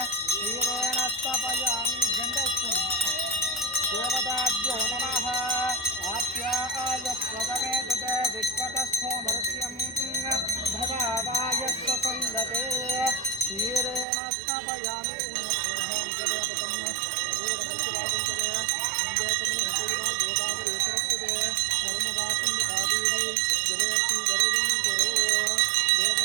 देवताभ्यो नमः। आप्याय स्वदमे तते विश्वतस्थो मर्त्यं भवाय स्वसंगते क्षीरेण स्नापयामि उन्नतोऽहं कदपदं दूरदर्शवादन्तरे इन्द्रकमनेकैवा गोदावरी सरस्वते नर्मदा सिन्धुकादेवी जलेऽस्मिन् गरुडं कुरु।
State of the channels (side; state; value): left; drops out; at 14.1 s